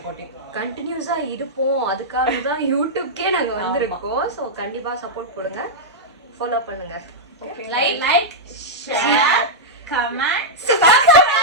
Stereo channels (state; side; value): normal; both; correlation -0.07